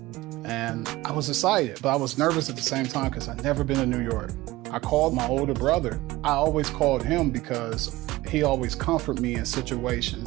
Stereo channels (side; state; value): left; quieter; 18.7 dB